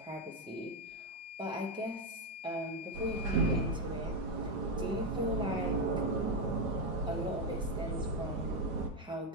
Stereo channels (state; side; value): normal; both; correlation 0.07